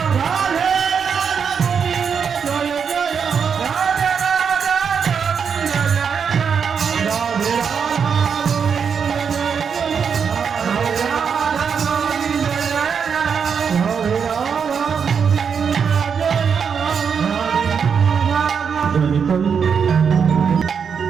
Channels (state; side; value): quieter; left; 6.7 dB